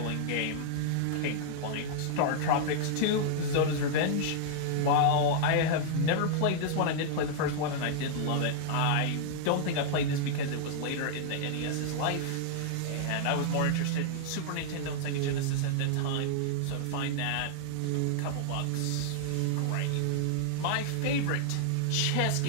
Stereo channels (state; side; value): different; both; correlation -0.01